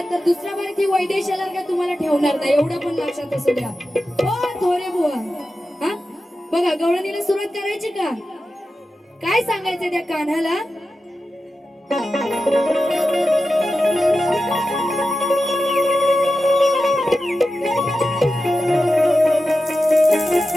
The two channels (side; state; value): both; normal; correlation 0.92